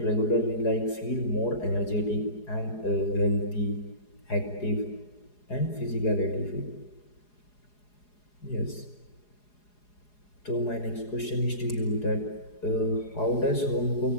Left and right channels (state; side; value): late; right; 4.8 ms